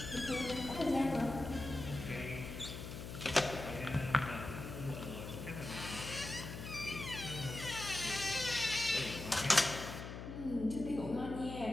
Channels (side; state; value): left; noise; hum, 8 dB below the sound